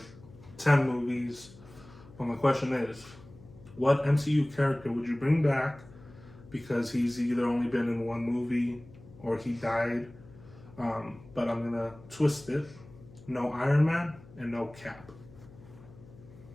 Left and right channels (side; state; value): left; noise; hum, 21 dB below the sound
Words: 10 movies. Well, my question is, what MCU character would you bring back because he's either only been in one movie or he died? But I'm going to twist it. No Iron Man and no Cap.